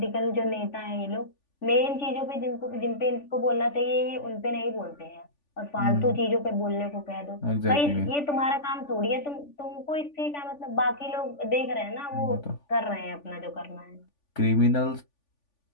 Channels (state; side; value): late; right; 3.5 ms